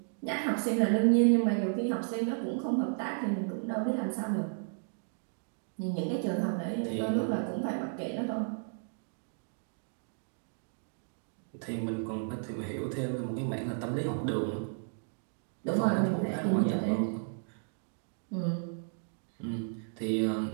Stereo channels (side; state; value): left; silent; digital silence